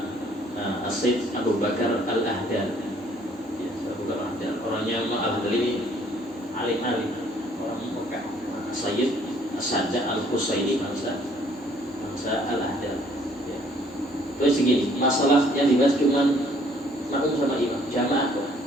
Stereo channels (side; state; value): both; normal; correlation 0.61